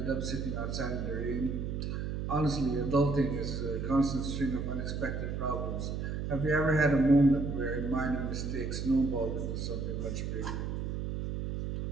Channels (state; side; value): noise; right; hum, 3 dB below the sound